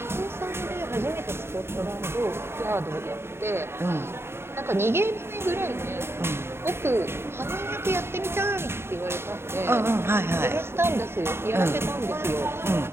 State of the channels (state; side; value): late; left; 0.12 ms